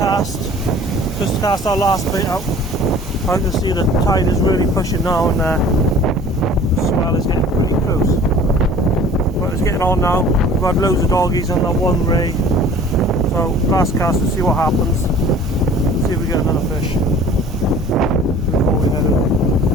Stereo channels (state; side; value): normal; both; correlation 0.47